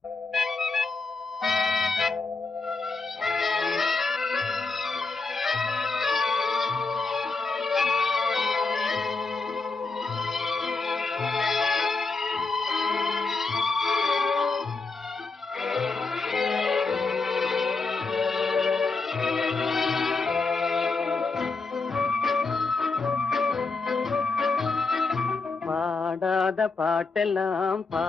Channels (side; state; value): right; quieter; 4.0 dB